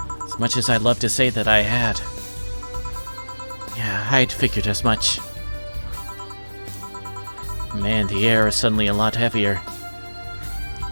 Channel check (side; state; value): both; inverted; correlation -1.00